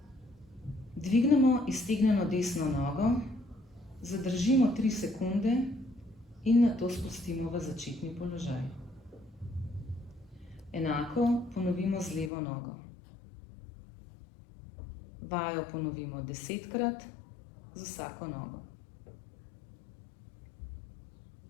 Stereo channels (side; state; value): right; drops out; at 12.3 s